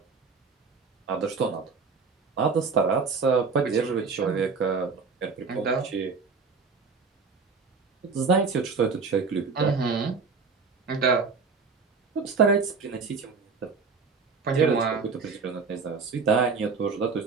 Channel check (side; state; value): left; quieter; 5.0 dB